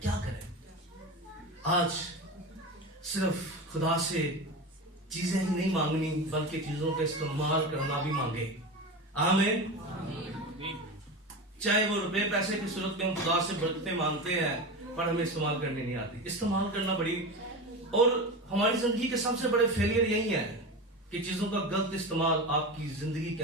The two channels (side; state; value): both; normal; correlation 0.25